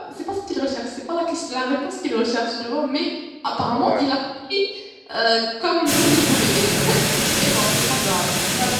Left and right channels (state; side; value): identical; both; correlation 1.00